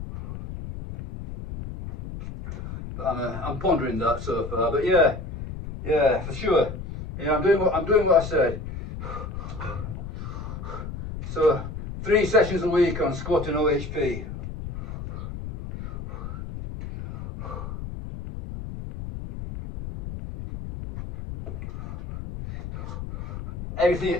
But I'm pondering that so far. But yeah, for sure. You know, I'm doing what I said. So 3 sessions a week on squat and OHP.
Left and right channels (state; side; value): noise; left; rumble, 8 dB below the sound